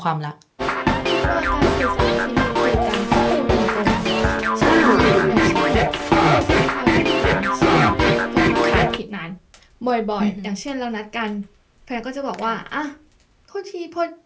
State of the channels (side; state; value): both; identical; correlation 1.00